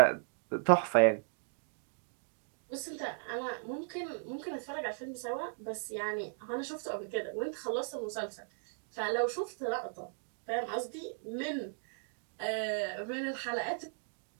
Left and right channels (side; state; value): left; silent; digital silence